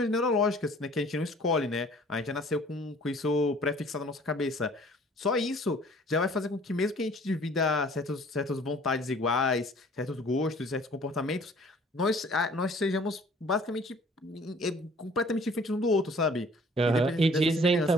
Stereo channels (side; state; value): both; normal; correlation 0.53